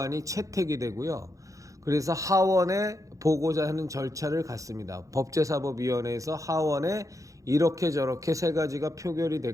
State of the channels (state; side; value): late; left; 0.16 ms